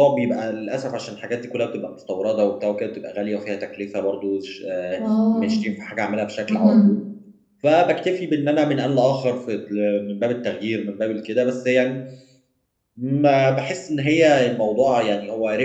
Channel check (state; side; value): identical; both; correlation 1.00